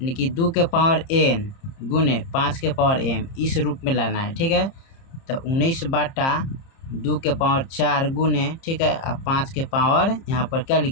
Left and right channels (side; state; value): right; late; 30 ms